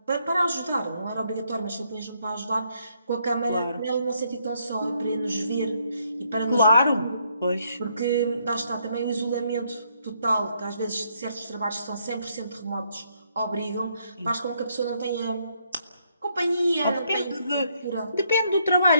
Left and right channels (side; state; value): both; inverted; correlation -0.73